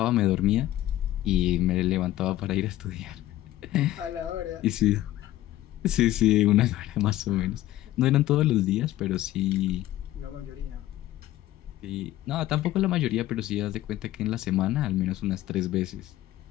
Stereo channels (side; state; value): right; quieter; 14.6 dB